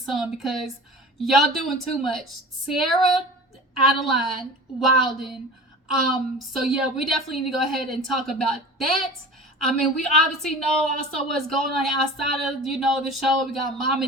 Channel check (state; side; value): normal; both; correlation 0.38